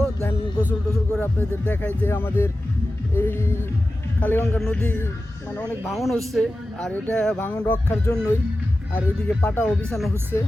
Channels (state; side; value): normal; both; correlation 0.94